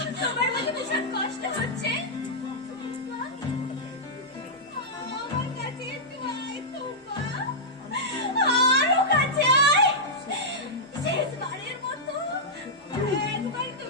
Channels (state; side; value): normal; both; correlation -0.10